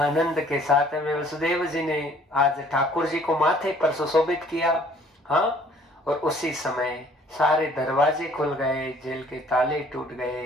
के साथ में वसुदेव जी ने आज ठाकुर जी को माथे पर सुशोभित किया। हाँ, और उसी समय सारे दरवाजे खुल गए, जेल के ताले टूट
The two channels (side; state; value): both; normal; correlation 0.57